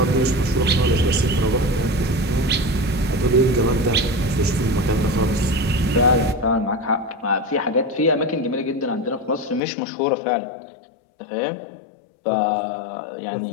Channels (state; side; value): drops out; right; at 9.6 s